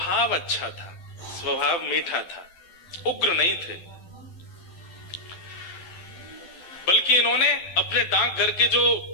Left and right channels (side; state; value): right; late; 12 ms